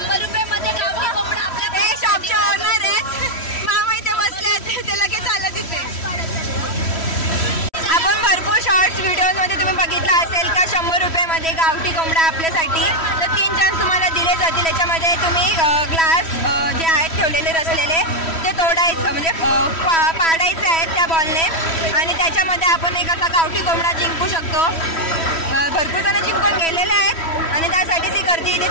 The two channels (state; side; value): late; right; 3.1 ms